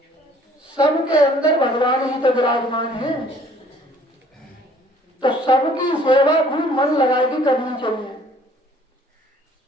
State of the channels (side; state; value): both; normal; correlation 0.56